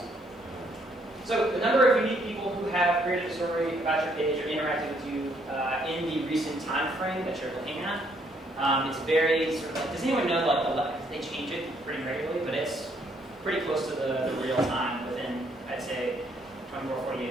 So the number of unique people who have created a story about your page or interacted with you in the recent time frame that you're looking at, it's very sort of like, does anyone know like they change it pretty regularly, but it's pretty close to the real time within, I'd say, 24, 48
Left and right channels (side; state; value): both; normal; correlation 0.69